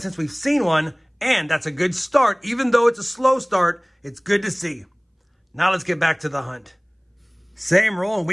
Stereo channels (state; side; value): identical; both; correlation 1.00